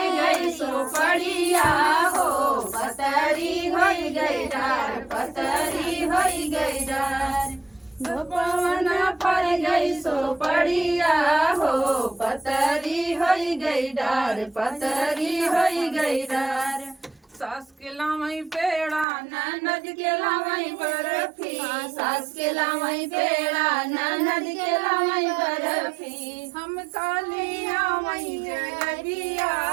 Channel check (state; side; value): drops out; left; at 19.1 s